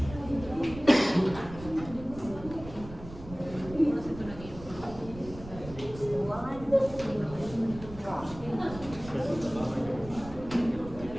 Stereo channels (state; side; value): noise; right; rumble, 14 dB below the sound